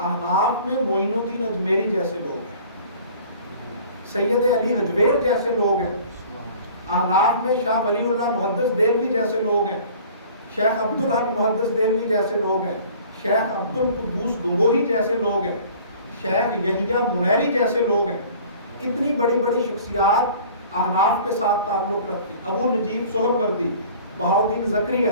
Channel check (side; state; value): both; inverted; correlation -0.48